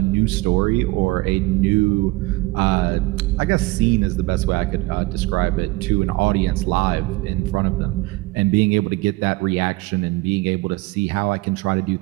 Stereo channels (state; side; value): quieter; left; 21.6 dB